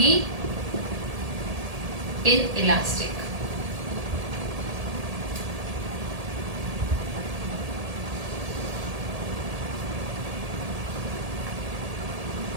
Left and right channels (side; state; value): left; late; 1.8 ms